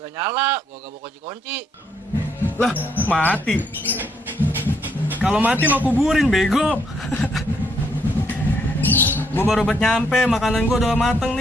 gak nyala, gua gak bawa kunci-kunci. Lah, mati. Kalau mati mau kuburin, bego. Gua baru buat nyampe, makanan gua udah mateng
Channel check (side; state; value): both; normal; correlation 0.73